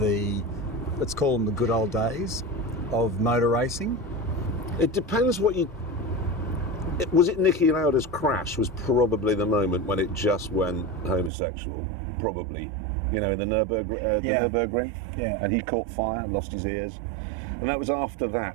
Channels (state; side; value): drops out; left; at 11.3 s